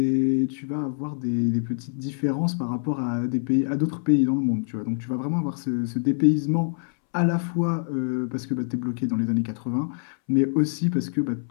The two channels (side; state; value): right; silent; 62 dB below the other